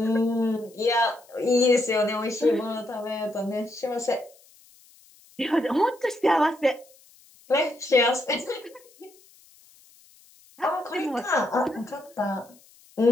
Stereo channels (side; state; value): left; noise; hiss, 27 dB below the sound